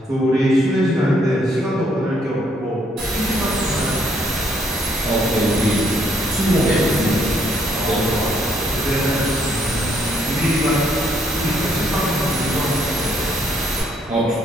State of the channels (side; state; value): both; normal; correlation 0.70